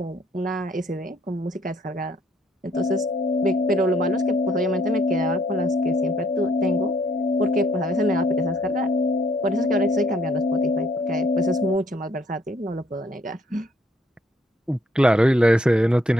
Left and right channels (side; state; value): both; normal; correlation 0.66